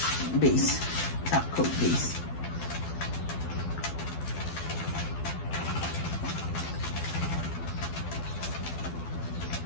base, top coat base.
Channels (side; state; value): right; late; 12 ms